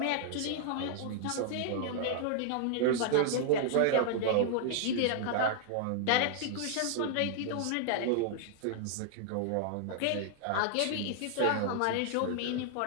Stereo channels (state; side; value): different; both; correlation -0.01